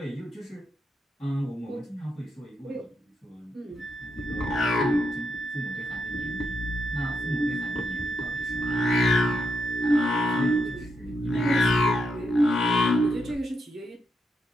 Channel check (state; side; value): normal; both; correlation 0.81